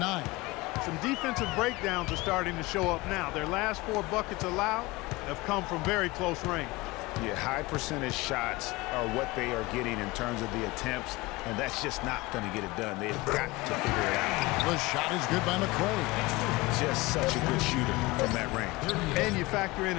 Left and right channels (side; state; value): right; quieter; 21.7 dB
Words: Some defensive breakdowns are starting to show up now. Their last 4 buckets allowed have come from very close range. Yeah, high percentage shots are what they are getting in terms of the attempts, and that's just not going to get it done. They've got to figure it out. The shot is good by McCray. Just such a good shooter from that range. And you factor in